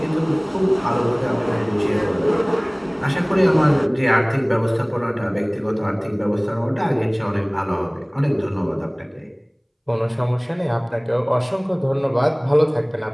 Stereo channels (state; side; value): identical; both; correlation 1.00